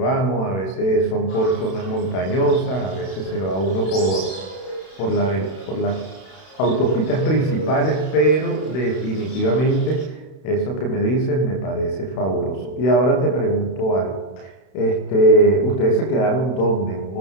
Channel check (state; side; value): late; right; 32 ms